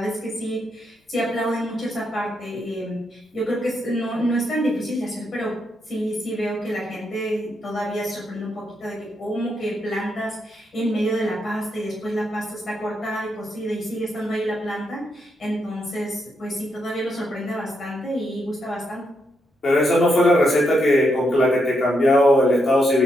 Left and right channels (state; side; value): normal; both; correlation 0.80